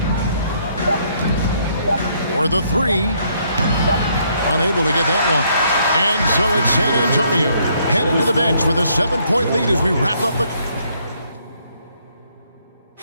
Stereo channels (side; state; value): both; inverted; correlation -0.69